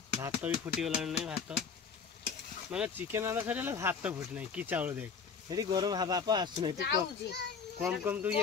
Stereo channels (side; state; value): right; quieter; 6.0 dB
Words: भात भी फुटीगला नहीं भात माने चिकेन रंधा सर भात फुटी ना कि चाउल देख ये गरम बाप आसुना तू कम कम तू